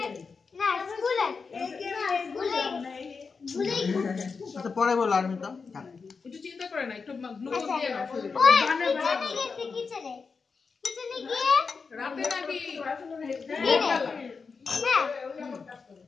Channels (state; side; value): quieter; right; 5.0 dB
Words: না স্কুলে ভুলে আচ্ছা পরে বলো আর্মিতা। একটু চিন্তা করে না, একটু গ্লুকোজ দিয়ে নাও শরীরে। ওই কিচেনে গেছে কিচেনে গিয়ে রাতে নাকি দিনে হ্যাঁ